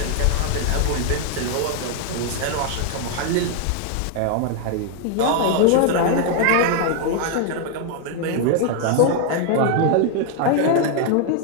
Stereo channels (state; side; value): different; both; correlation 0.00